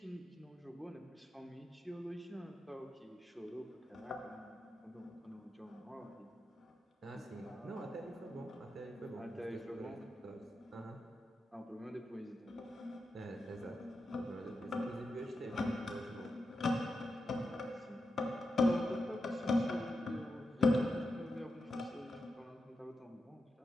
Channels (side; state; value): both; normal; correlation 0.88